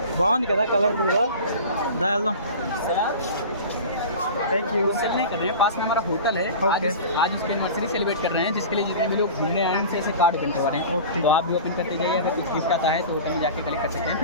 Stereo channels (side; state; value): both; inverted; correlation -0.35